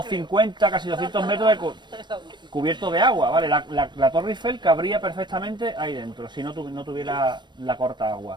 casi 200 metros de cubierto de agua, ¿vale? La Torre Eiffel cabría perfectamente ahí dentro, si no tuviera la corta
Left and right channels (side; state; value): left; late; 0.22 ms